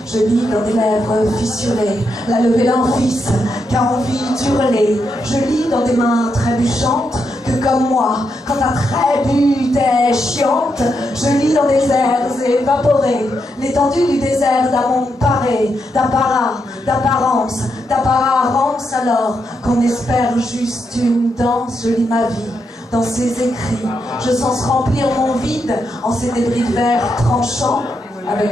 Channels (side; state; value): both; normal; correlation 0.82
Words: je lis dans des lèvres fissurées la levée d'un fils qui a envie d'hurler. Je lis dans des mains trébuchantes que comme moi, quand ta trébute est chiante, je lis dans des airs évaporés l'étendue du désert d'un monde paré, d'apparat, d'apparence, d'apparence, alors qu'on espère juste une danse. Je lis ma vie dans ces écrits, je sens remplir mon vide en ces débris de verre tranchants,